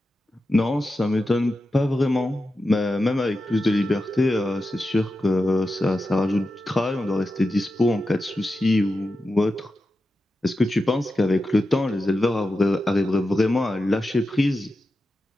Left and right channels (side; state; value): both; normal; correlation 0.91